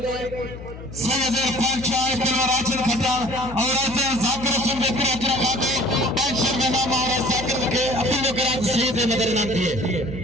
सैयद इरफान शाह तलवार राशिद खट्टर और ऐसे जाकर सुन के पूरा पूरा बातें 500 रुपया नाम और जाकर के अपने कराच सैयद नगर नाम दिए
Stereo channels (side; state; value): left; noise; hum, 13 dB below the sound